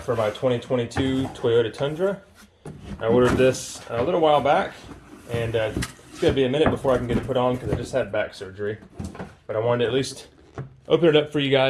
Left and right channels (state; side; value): identical; both; correlation 1.00